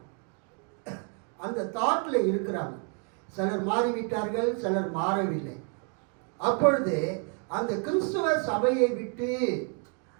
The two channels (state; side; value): quieter; left; 39.7 dB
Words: அந்த தாட்டில் இருக்கிறாங்க. சிலர் மாறிவிட்டார்கள், சிலர் மாறவில்லை. அப்பொழுது அந்த கிறிஸ்துவ சபையை விட்டு